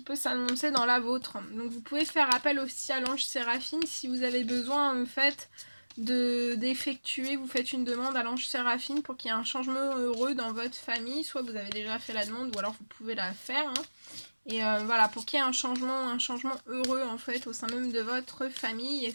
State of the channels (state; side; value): inverted; both; correlation -1.00